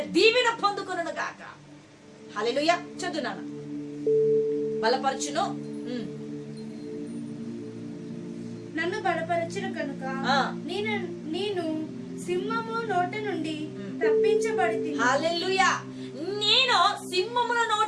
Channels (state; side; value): identical; both; correlation 1.00